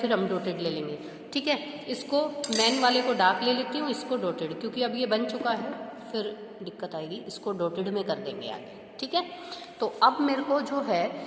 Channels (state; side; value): identical; both; correlation 1.00